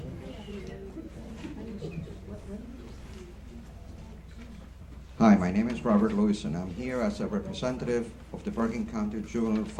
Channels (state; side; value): identical; both; correlation 1.00